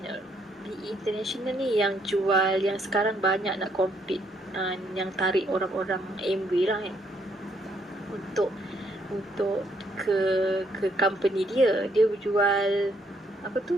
BE International ni yang jual, yang sekarang banyak nak compete, yang tarik orang-orang Amway lah untuk ke company dia. Dia jual apa tu,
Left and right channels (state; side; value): normal; both; correlation 0.70